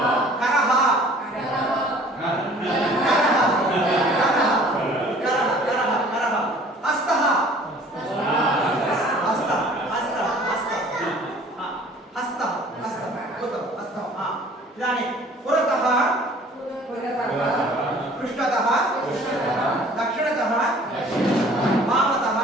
करः हस्तः इदानीं पुरतः पृष्ठतः दक्षिणतः वामतः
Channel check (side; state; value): both; normal; correlation 0.51